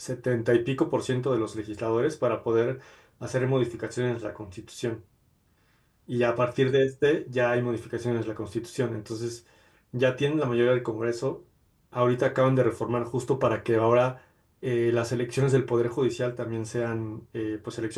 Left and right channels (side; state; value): both; identical; correlation 1.00